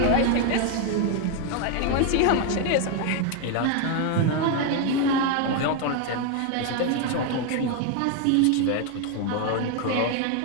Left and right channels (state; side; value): different; both; correlation 0.01